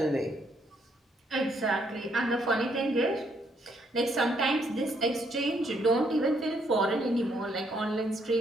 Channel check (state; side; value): normal; both; correlation 0.72